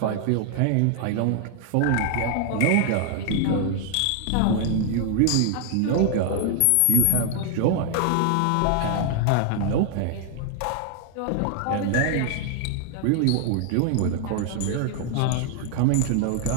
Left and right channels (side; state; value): both; different; correlation 0.00